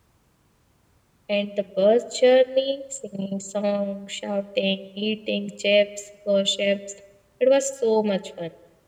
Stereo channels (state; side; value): identical; both; correlation 1.00